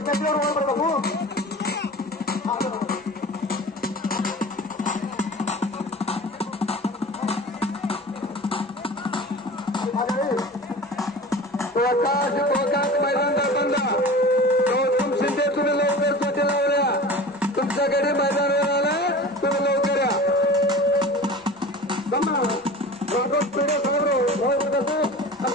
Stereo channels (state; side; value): normal; both; correlation 0.37